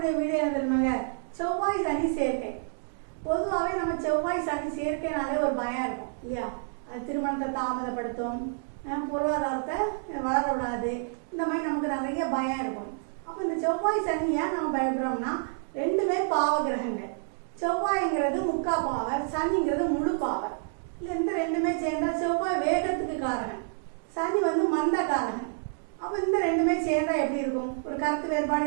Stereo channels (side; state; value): left; silent; digital silence